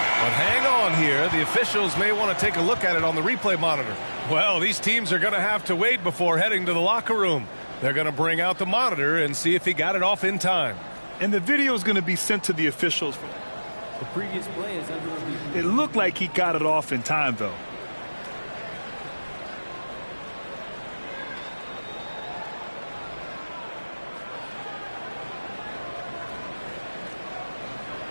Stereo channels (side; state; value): both; inverted; correlation -1.00